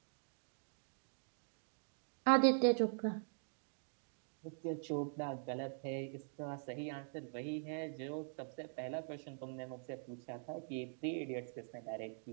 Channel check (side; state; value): left; silent; digital silence